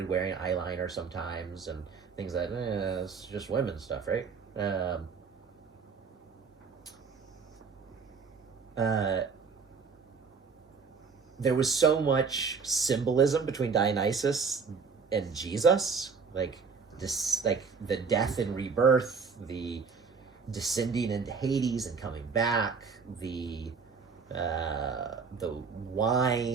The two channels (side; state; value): left; quieter; 5.4 dB